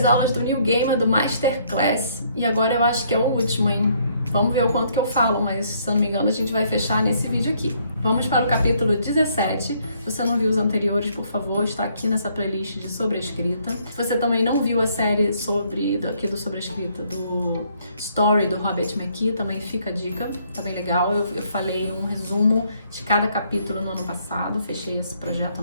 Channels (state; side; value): inverted; both; correlation -0.67